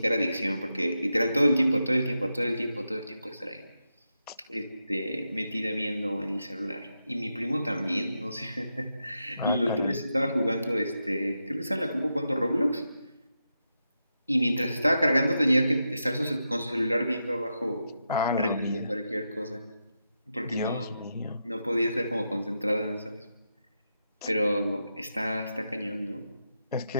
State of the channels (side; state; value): both; inverted; correlation -0.86